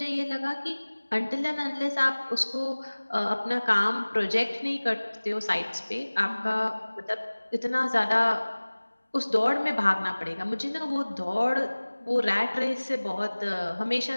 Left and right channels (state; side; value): inverted; both; correlation -1.00